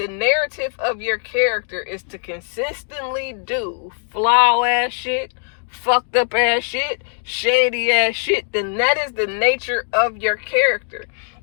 narrative of your character is to consistently do flaw ass shit, fucked up ass shit, shady ass shit, then that is the nature of your character.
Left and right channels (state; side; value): silent; right; 65 dB below the other